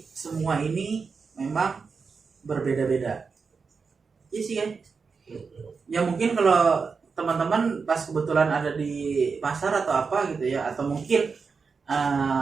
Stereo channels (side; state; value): left; quieter; 5.1 dB